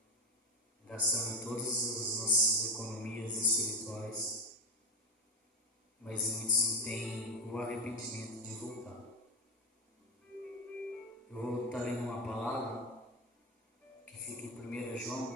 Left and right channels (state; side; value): normal; both; correlation 0.18